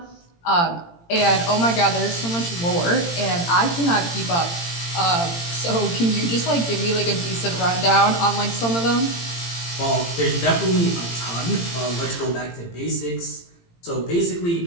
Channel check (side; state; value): right; late; 18 ms